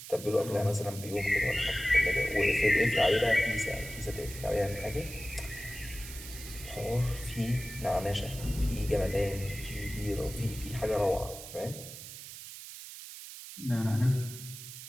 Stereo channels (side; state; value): right; noise; hiss, 12 dB below the sound